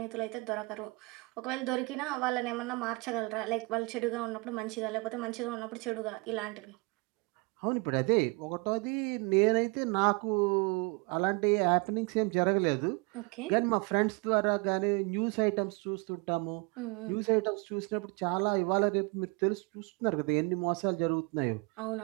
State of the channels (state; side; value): quieter; left; 28.8 dB